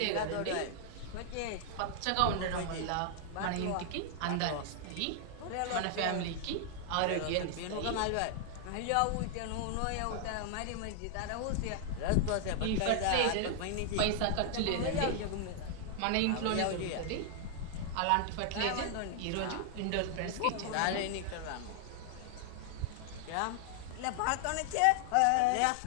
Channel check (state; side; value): different; both; correlation 0.00